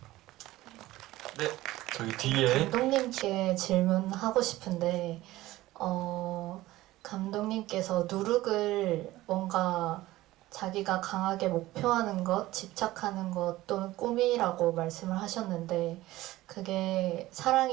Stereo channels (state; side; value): quieter; left; 17.0 dB